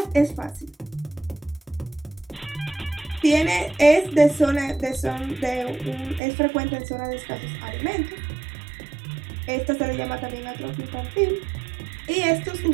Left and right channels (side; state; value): left; drops out; at 6.2 s